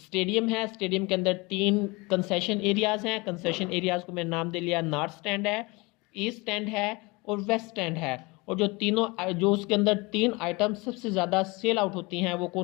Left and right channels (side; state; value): right; quieter; 25.5 dB